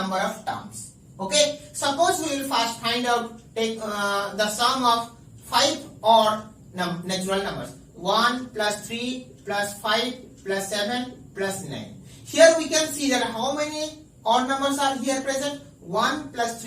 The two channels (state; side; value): identical; both; correlation 1.00